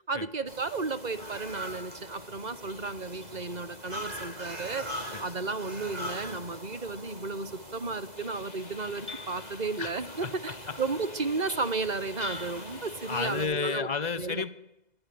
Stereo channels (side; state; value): left; late; 2.0 ms